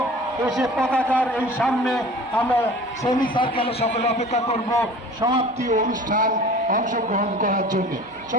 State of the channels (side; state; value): both; normal; correlation 0.43